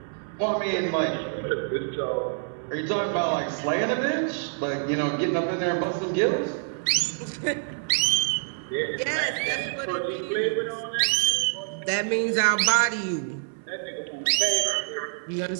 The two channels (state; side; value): silent; left; 59 dB below the other